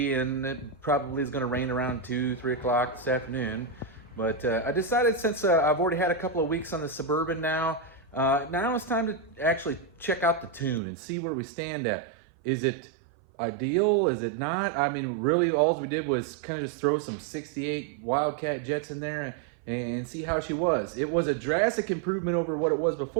and it probably is going to rain around 2-3 o'clock this afternoon. But I decided, since I've already had a couple of weeks on the Suburban now it's time to actually check out the tune and see where we stand at. Is it ideal? Is it not? I mean, really all we did was kind of just throw some 68 Wildcat jets in there and see how she was. It was a drastic improvement over what it was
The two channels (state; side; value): drops out; left; at 10.8 s